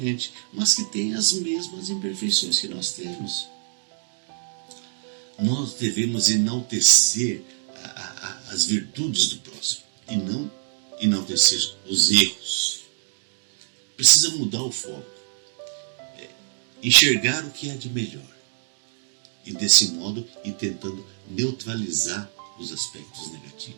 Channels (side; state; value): left; silent; digital silence